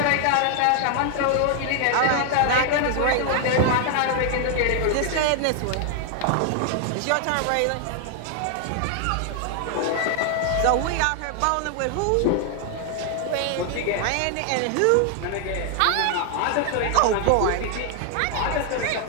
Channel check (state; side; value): different; both; correlation 0.00